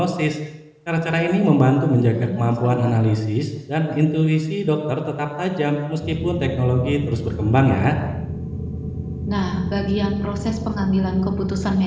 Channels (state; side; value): identical; both; correlation 1.00